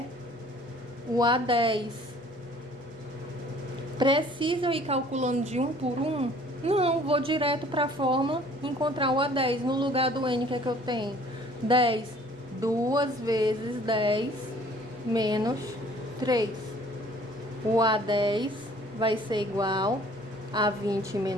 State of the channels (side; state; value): both; normal; correlation 0.54